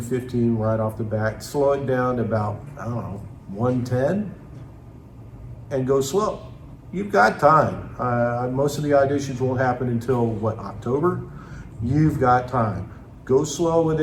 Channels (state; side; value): identical; both; correlation 1.00